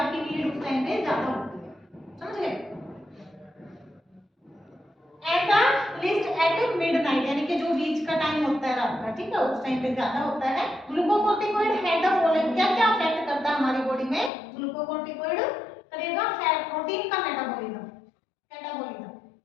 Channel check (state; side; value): drops out; right; at 14.3 s